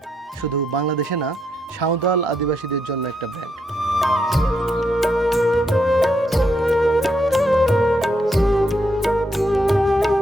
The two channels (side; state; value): both; normal; correlation 0.78